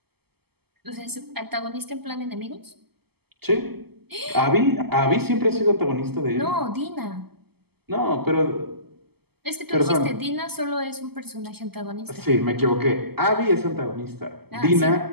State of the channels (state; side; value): late; left; 0.96 ms